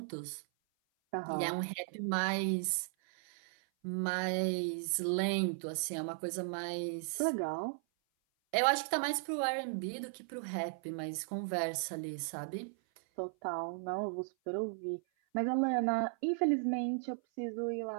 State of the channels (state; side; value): silent; left; 54 dB below the other